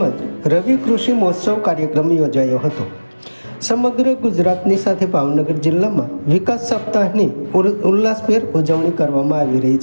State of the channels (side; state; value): both; inverted; correlation -1.00